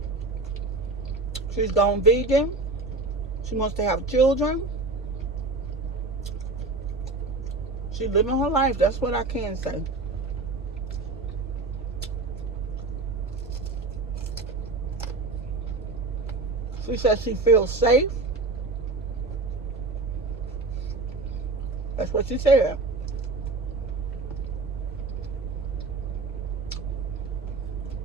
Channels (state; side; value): quieter; left; 3.4 dB